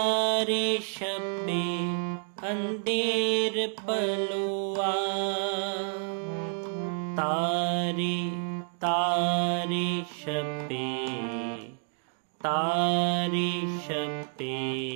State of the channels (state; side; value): silent; left; 58 dB below the other